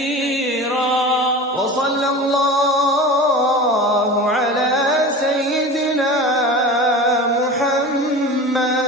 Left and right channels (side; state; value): both; normal; correlation 0.33